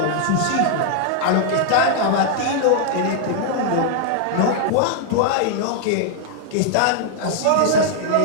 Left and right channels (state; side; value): different; both; correlation -0.01